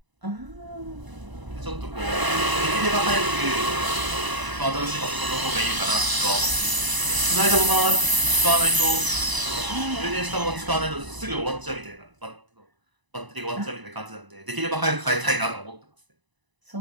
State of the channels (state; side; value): late; left; 1.0 ms